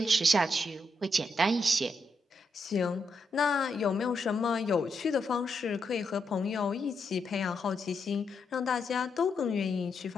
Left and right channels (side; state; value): both; normal; correlation 0.82